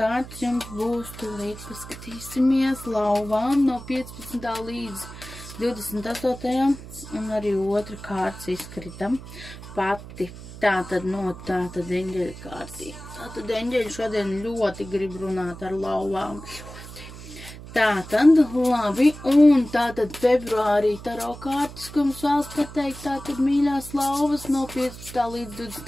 jums būs, tūlīt paskatīsimies, lauvām no 15. līdz 28. un arī otra kārts izskritam pati. Tātad no tātad eņģeļa kārtī. Tātad eņģeļi šodien ļoti grib runāt ar lauvām. Tātad, labi, un tātad februārī taro kārtas, ko mums vēlas pateikt, tātad mīļās lauvas no 15. līdz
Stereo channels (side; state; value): right; noise; hum, 14 dB below the sound